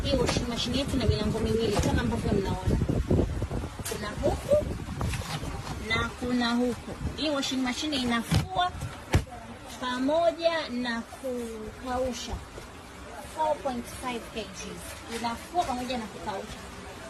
Hii washing machine yetu ina milango miwili kama ambavyo mnaona. Kuna huku na kuna huku. Hii washing machine inafua pamoja na kukausha 4.5 kg. Inafua pamoja na kukausha.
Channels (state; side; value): identical; both; correlation 1.00